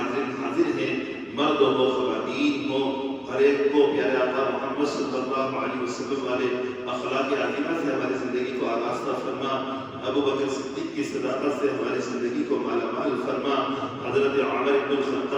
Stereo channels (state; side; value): identical; both; correlation 1.00